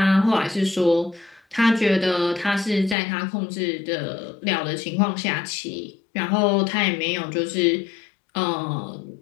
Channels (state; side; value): drops out; right; at 3.0 s